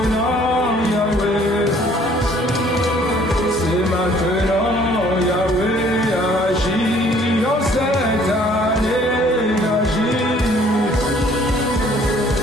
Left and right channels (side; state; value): both; normal; correlation 0.58